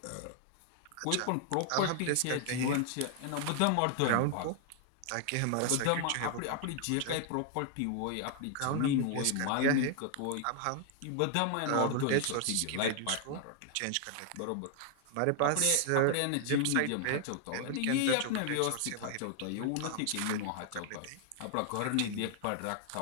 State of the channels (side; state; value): both; different; correlation 0.00